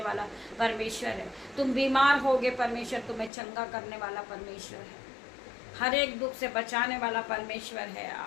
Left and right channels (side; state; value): right; drops out; at 3.3 s